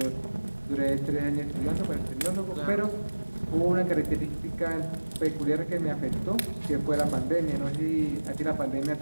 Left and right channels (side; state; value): both; inverted; correlation -1.00